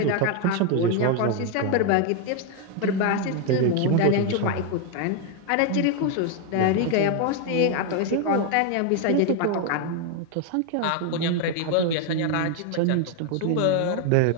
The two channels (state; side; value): different; both; correlation 0.01